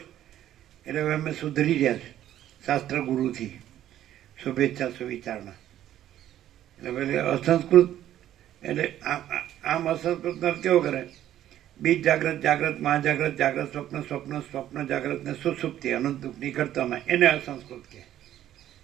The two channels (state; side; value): quieter; left; 12.1 dB